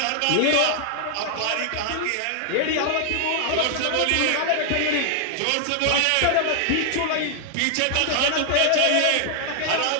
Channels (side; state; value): both; different; correlation 0.00